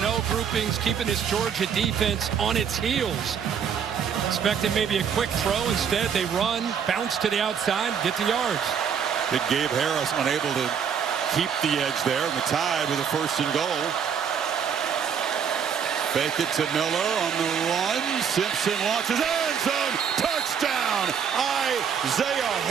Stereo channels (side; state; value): left; quieter; 7.4 dB